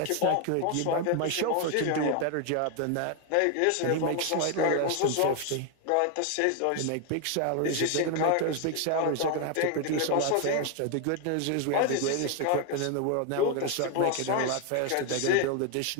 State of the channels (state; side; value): different; both; correlation 0.01